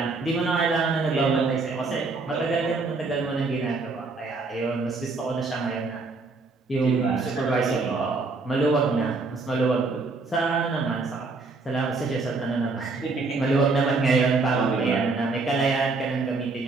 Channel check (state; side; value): quieter; left; 3.9 dB